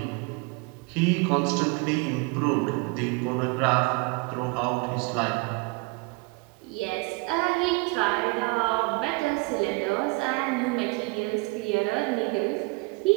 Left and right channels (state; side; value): quieter; left; 27.7 dB